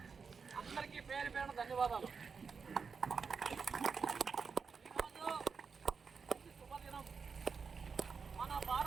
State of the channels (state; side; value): quieter; left; 5.5 dB